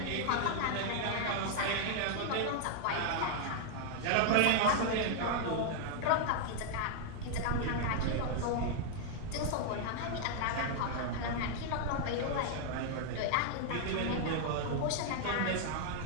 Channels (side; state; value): both; different; correlation 0.00